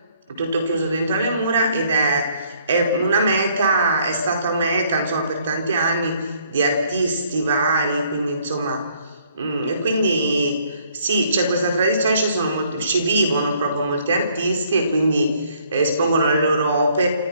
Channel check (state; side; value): inverted; both; correlation -0.64